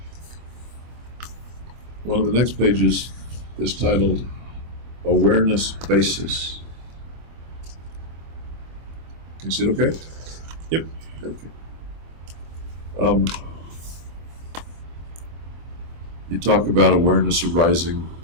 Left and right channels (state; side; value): late; left; 25 ms